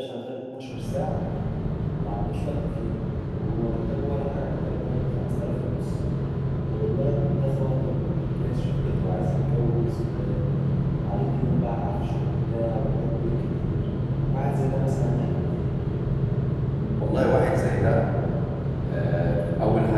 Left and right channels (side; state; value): both; identical; correlation 1.00